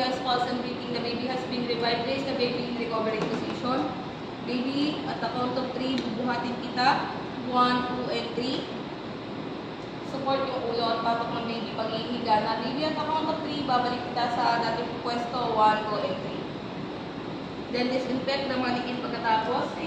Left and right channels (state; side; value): identical; both; correlation 1.00